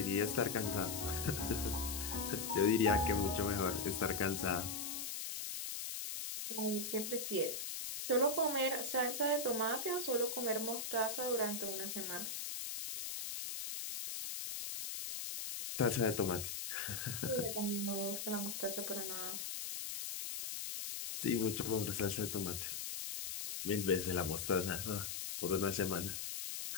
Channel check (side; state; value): left; noise; hiss, 4 dB below the sound